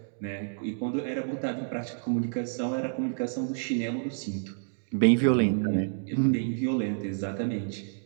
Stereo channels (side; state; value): left; silent; digital silence